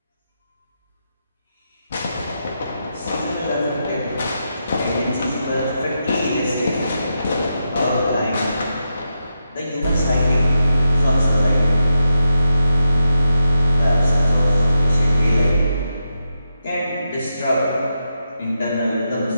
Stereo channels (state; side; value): inverted; both; correlation -0.84